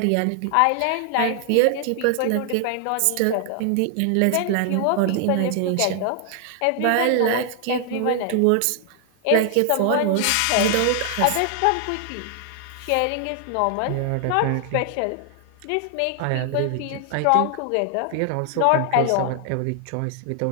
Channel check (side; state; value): both; different; correlation 0.00